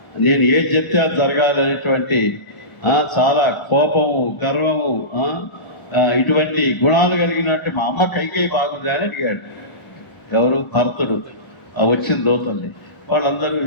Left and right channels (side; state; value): right; late; 1.0 ms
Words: నేను ఏది చెప్తే అది జరగాలనేటువంటి, చాలా కోపము, గర్వము, ఇటువంటి గుణాలు కలిగినట్టు మా అమ్మ కైకేయి బాగుంది అని అడిగాడు. ఎవరు? భరతుడు. వచ్చిన దూతల్ని వాళ్ళందరూ